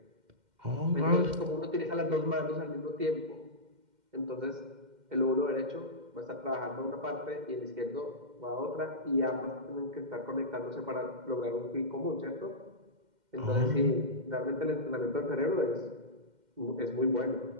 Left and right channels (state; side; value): late; left; 2.1 ms